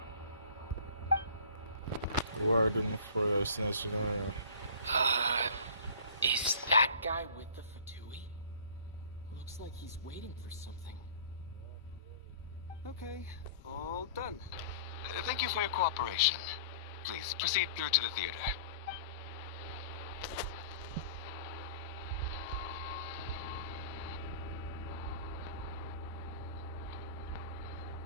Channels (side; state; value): both; inverted; correlation -0.44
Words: Warden for Snezhnaya. Is that guy with the Fatui? Looks like he's waiting for something. Okay, all done. Thank you for your cooperation. Please proceed through to the theater.